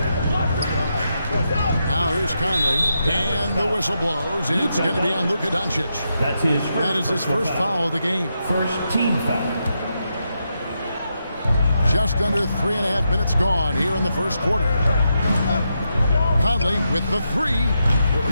Now here's Conley. And the whistle blows. It's going to be on Luka Doncic. That is his first foul of the game. First team foul. Just under 3.5 minutes gone here in the first quarter. Conley with the 3.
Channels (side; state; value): both; inverted; correlation -0.84